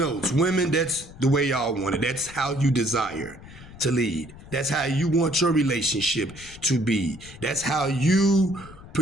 Women, that's the way y'all want it. That's how you desire to lead. That's how you want your relationship to be. That's how you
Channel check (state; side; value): noise; left; rumble, 18 dB below the sound